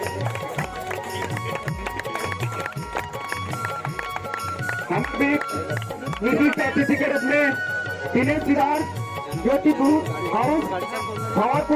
हम भी विशिष्ट अतिथि के रूप में दिनेश सिदार ज्योतिपुर हाउस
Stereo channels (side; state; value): both; identical; correlation 1.00